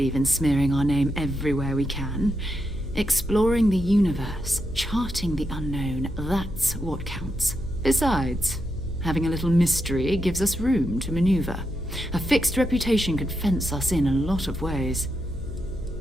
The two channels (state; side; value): noise; left; hum, 10 dB below the sound